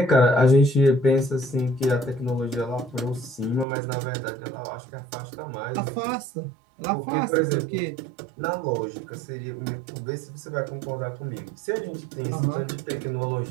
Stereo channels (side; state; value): left; drops out; at 3.7 s